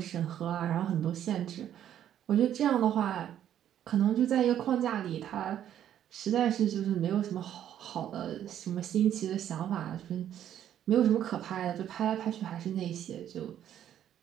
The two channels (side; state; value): left; quieter; 10.6 dB